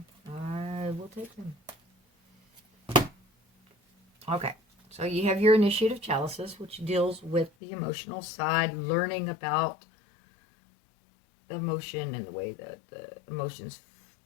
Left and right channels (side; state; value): right; drops out; at 7.5 s